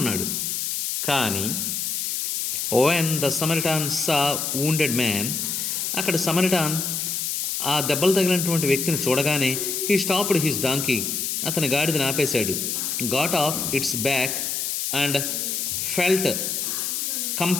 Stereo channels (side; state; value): left; noise; hiss, 1 dB below the sound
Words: కానీ when the Samaritan saw wounded man, అక్కడ సమరిటాన్ ఆ దెబ్బలు తగిలినటువంటి వ్యక్తిని చూడగానే హీ స్టాప్డ్ హిస్ డాంకీ. అతని గాడిదని ఆపేశాడు. Got of it's back and felt